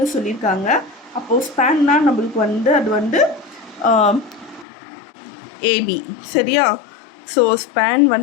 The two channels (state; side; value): drops out; right; at 4.7 s